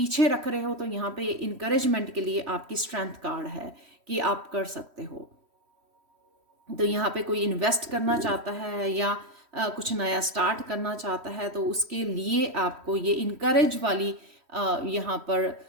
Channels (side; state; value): left; late; 3.1 ms